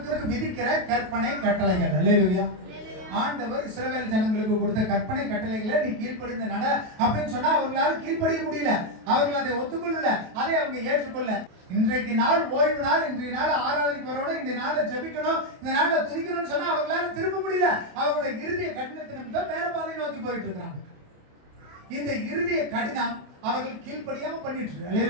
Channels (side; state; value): left; late; 28 ms